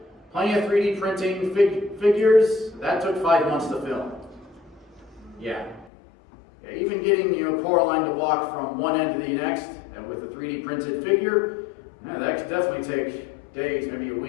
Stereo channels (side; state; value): right; drops out; at 5.9 s